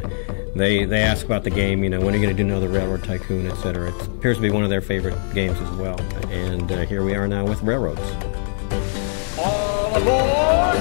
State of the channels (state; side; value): silent; right; digital silence